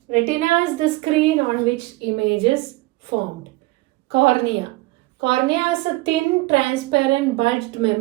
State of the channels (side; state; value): left; quieter; 20.9 dB